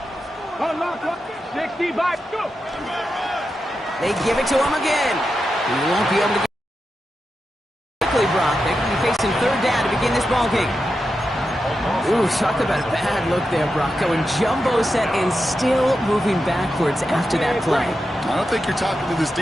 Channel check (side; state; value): both; normal; correlation 0.89